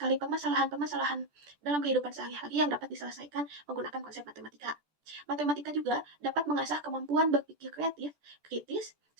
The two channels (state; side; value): late; left; 14 ms